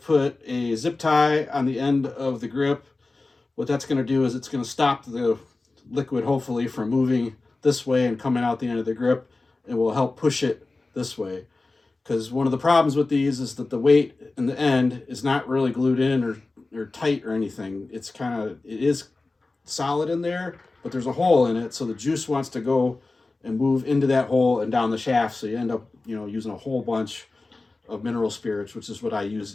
put a zip tie on the end of the grip. What that's going to do is it's going to stop the liquid, hopefully, from moving this way and coming out the end of the grip, and will help push it this way. Because one of the problems with these is that the weight in the end is not really glued in or tight or anything. It is solid in there, but there's a hole in it, so the juice wants to go and move into that hole and down the shaft, so you end up, you know, using a whole bunch of mineral spirits, which is what I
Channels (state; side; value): quieter; right; 3.4 dB